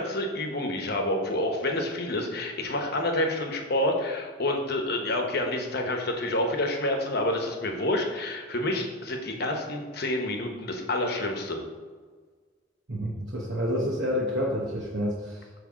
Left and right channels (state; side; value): normal; both; correlation 0.08